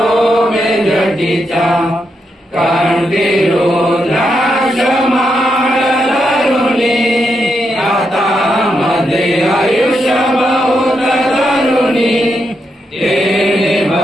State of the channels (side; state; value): both; normal; correlation 0.83